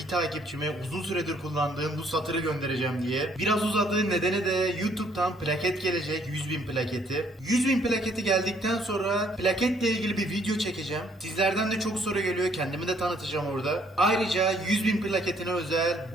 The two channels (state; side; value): normal; both; correlation 0.65